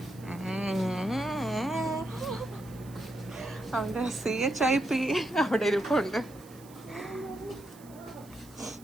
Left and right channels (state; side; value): noise; right; hiss, 23 dB below the sound